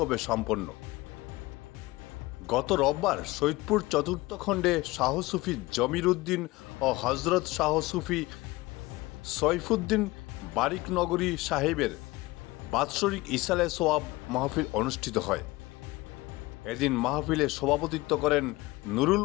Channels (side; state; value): right; quieter; 20.5 dB